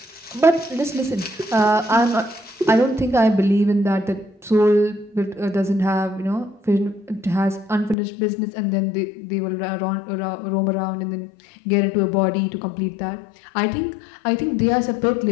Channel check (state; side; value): drops out; right; at 8.0 s